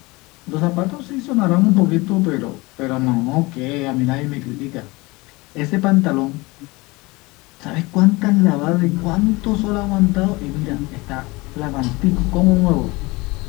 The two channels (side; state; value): right; quieter; 23.4 dB